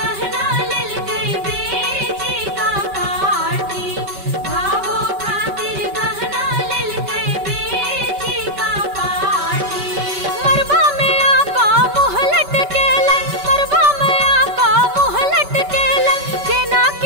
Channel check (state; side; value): late; left; 5.2 ms